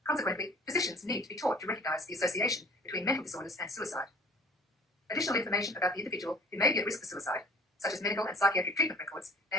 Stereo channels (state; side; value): normal; both; correlation 0.50